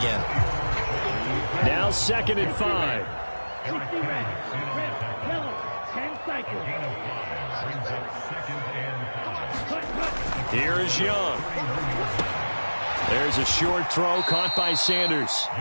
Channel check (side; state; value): both; inverted; correlation -1.00